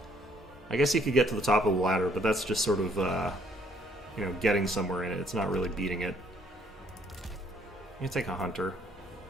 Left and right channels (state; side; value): normal; both; correlation 0.64